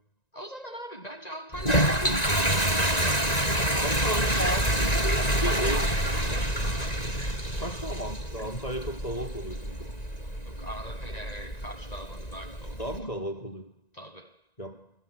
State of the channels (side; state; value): right; late; 1.9 ms